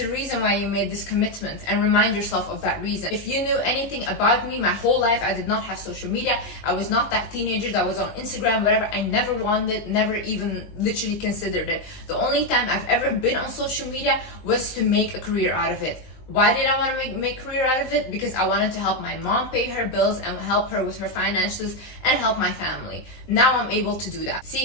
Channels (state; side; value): late; right; 19 ms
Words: a reason why you made this commitment, and remind yourself of that reason. If you knew anything about me, my whole life I did not have social media. I was not that teenager that was on Instagram, whatever. I never wanted, never even literally considered it. The only time I've ever been on social media was to make a career out of it. Why did I want to make a career out of it? Because I wanted to help my mom pay her bills and help her with her finances and help my family. Now I'm able to do that.